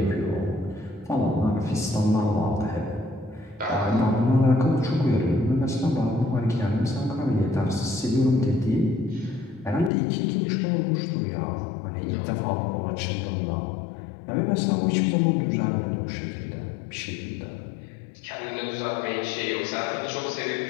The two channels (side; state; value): right; drops out; at 9.9 s